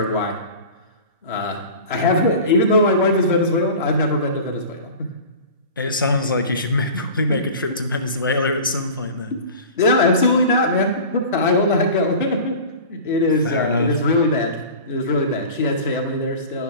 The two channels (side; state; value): both; inverted; correlation -0.37